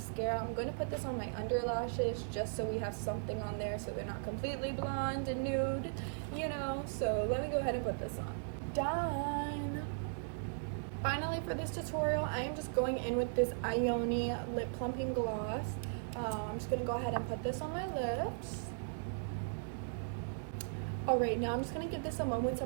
I'm going to put this on my under lashes just so we have something on there so they're not completely blonde and nude, you know. So let me go ahead and put this on. Done. Finally, for this tutorial, I am just going in with this Ioni Lip Plumping Gloss. I'm just going to go ahead and put this on my lips. Alright, now I'm just going to give this a moment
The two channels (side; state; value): left; silent; digital silence